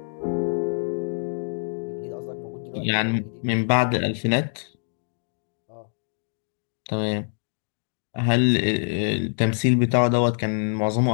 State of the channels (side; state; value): right; silent; digital silence